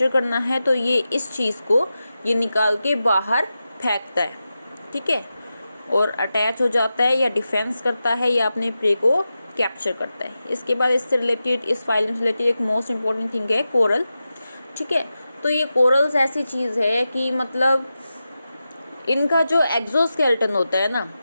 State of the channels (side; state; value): both; inverted; correlation -0.92